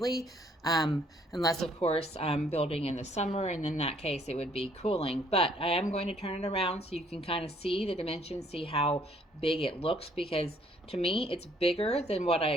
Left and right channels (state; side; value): normal; both; correlation 0.64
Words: Unless of course I'm building in the summer, and in that case it would be cooling. But I am going to turn it around so you can kind of see the dimensions, see how big it looks, because to me it's bigger than what I